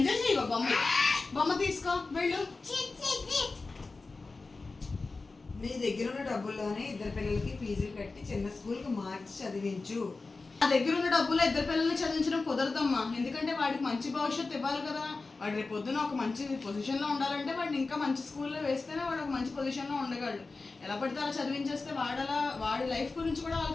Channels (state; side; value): quieter; right; 3.8 dB